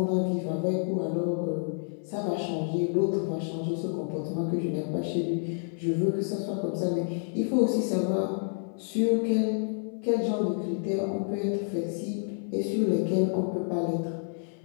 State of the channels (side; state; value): right; silent; 59 dB below the other